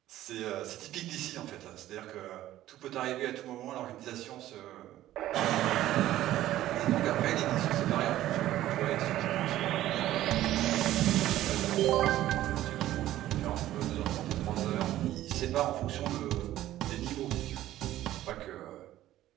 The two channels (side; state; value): left; quieter; 14.0 dB